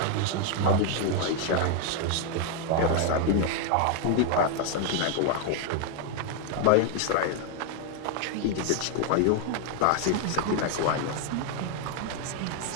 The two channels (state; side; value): different; both; correlation 0.00